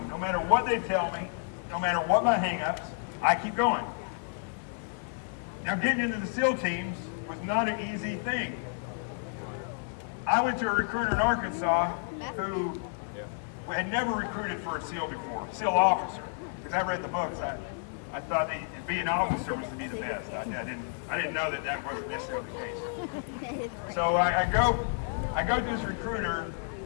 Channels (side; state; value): right; silent; digital silence